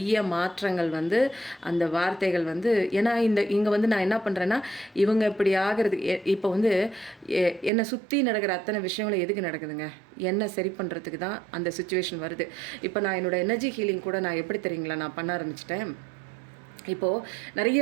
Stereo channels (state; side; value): drops out; left; at 7.7 s